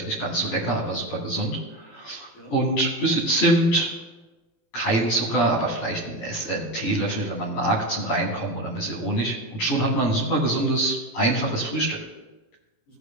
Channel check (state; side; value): late; right; 18 ms